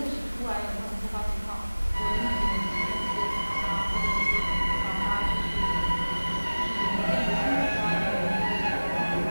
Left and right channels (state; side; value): inverted; both; correlation -1.00